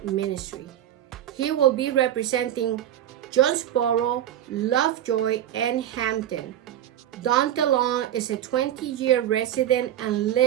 ministry. He will be representing Jonesboro, Lovejoy, and Hampton. Daunta Long is a 20-year resident and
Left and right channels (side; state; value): left; quieter; 11.4 dB